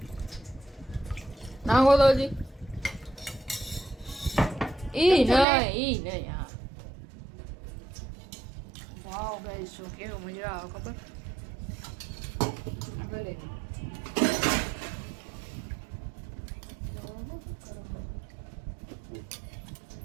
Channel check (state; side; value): drops out; left; at 5.5 s